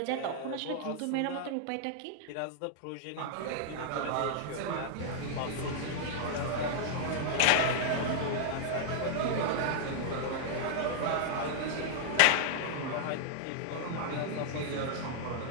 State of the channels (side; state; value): both; different; correlation -0.01